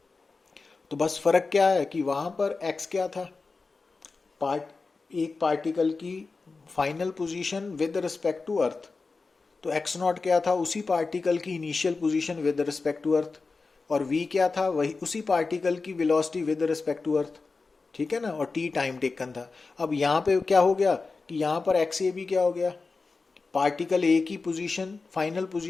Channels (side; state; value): right; quieter; 4.1 dB